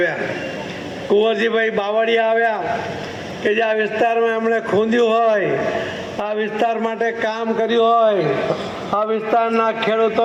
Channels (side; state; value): both; identical; correlation 1.00